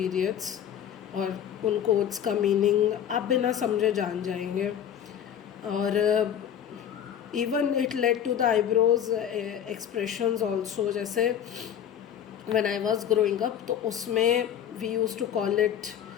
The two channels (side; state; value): right; quieter; 9.5 dB